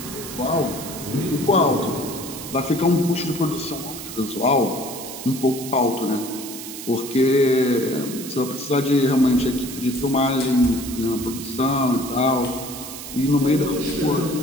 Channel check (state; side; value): noise; right; hiss, 10 dB below the sound